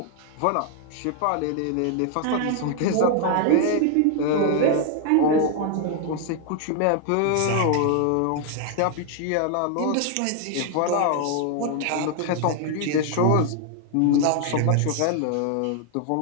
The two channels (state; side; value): different; both; correlation 0.00